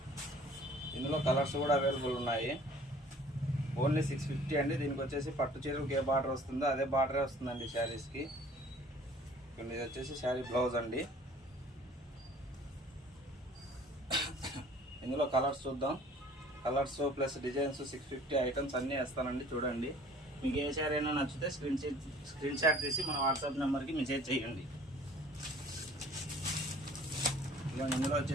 ఇందులో కలర్స్ కూడా అవైలబుల్ ఉన్నాయి. ఓన్లీ 650 అండి. దీనికి వచ్చేసి పట్టు చీరలకు ఏ బార్డర్ వస్తుందో అదే బార్డరే వస్తుందండి శారీస్కి. ఇది వచ్చేసి శారీ బ్లౌజ్ అండి. ఇందులో కలర్స్ చూద్దాం. కలర్స్ ప్లస్ డిజైన్స్ 650 ఐటమ్స్ అన్నీ వేస్తానండి. చూడండి, మీకు ఏ శారీ అయినా నచ్చితే స్క్రీన్ షాట్ తీసి మన వాట్సాప్ నెంబర్కి మెసేజ్ చేయండి. ఇందులో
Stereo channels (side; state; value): both; normal; correlation 0.52